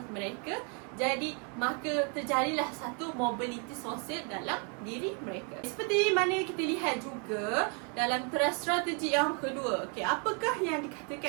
mereka. Jadi maka terjadilah satu mobiliti sosial dalam diri mereka. Seperti mana kita lihat juga dalam teras strategi yang kedua. Okey, apakah yang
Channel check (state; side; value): quieter; left; 37.3 dB